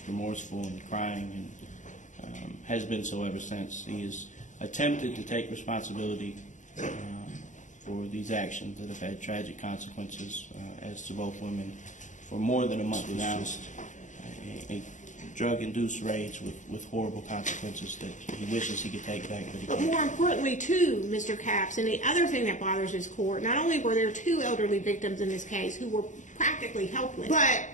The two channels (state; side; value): late; right; 0.36 ms